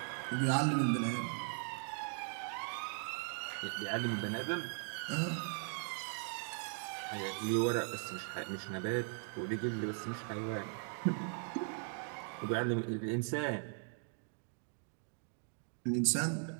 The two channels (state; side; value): silent; left; 52 dB below the other